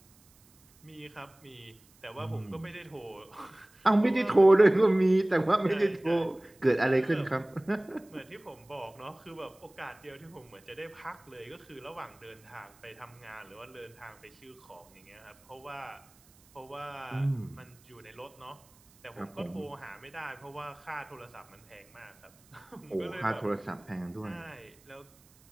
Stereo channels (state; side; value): noise; right; hiss, 28 dB below the sound